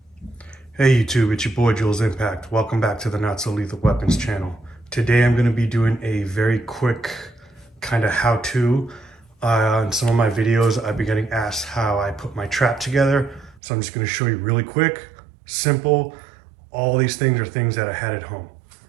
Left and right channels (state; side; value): drops out; left; at 13.6 s